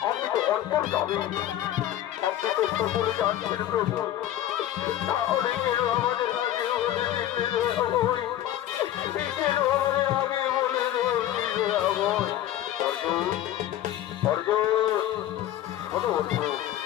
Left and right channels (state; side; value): quieter; right; 12.5 dB